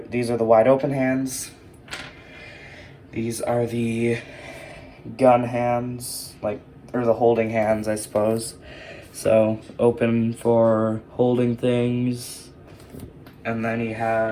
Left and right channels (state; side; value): identical; both; correlation 1.00